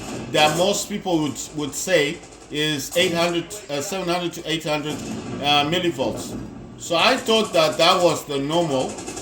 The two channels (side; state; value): both; identical; correlation 1.00